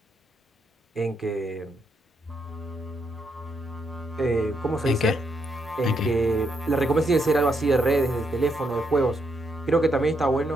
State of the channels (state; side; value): normal; both; correlation 0.78